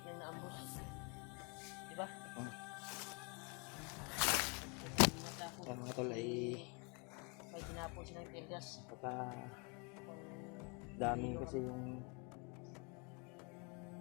na naambos. Diba? Yan mga tol ay may tinapos silang tear gas. baka Dami kasi yung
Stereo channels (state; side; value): quieter; right; 33.0 dB